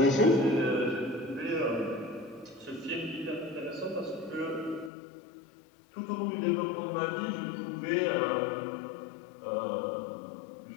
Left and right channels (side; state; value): right; drops out; at 4.9 s